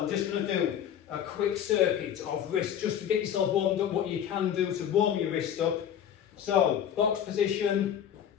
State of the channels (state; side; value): quieter; right; 9.5 dB